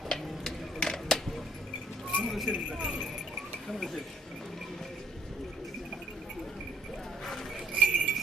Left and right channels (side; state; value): both; normal; correlation 0.64